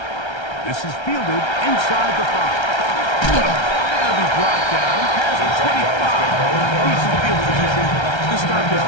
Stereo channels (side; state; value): right; late; 1.3 ms